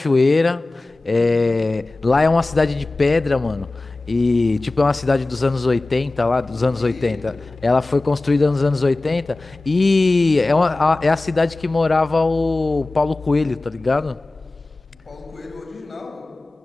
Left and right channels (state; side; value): quieter; right; 3.1 dB